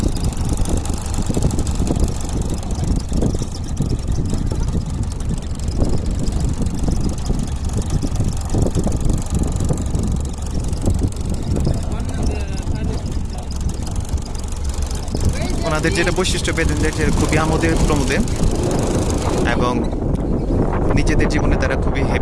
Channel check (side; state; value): both; identical; correlation 1.00